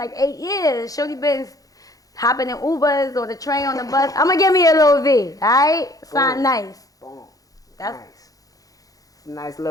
8 years. Shorty been hopping in Ubers or the train on the bus. I'm gonna give me a little V. All right, sound nice. Boom. That's nice. Nice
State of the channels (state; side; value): late; right; 0.17 ms